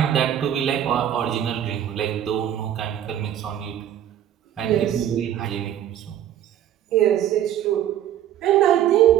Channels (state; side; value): quieter; left; 10.8 dB